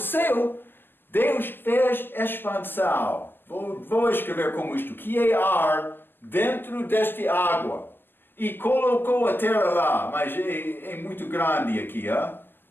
Deus fez expansão. Vou escrever como isto. Que é ar dentro desta água. E colocou a terra lá. Mas é muito grande aqui.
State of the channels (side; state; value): right; late; 0.095 ms